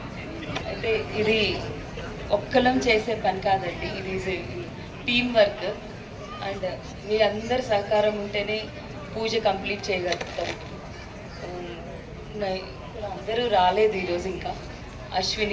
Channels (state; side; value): identical; both; correlation 1.00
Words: అయితే ఇది ఒక్కలం చేసే పని కాదండి, ఇది టీమ్ వర్క్. అండ్ మీ అందరి సహకారం ఉంటేనే పూజ కంప్లీట్ చేయగలుగుతాం. అందరూ రాలేదు ఈరోజు. ఇంకా